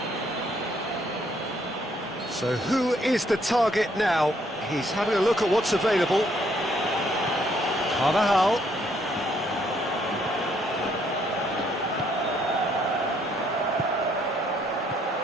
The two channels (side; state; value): both; normal; correlation 0.69